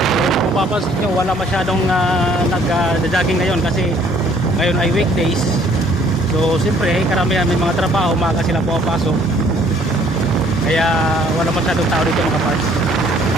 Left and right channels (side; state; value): both; normal; correlation 0.60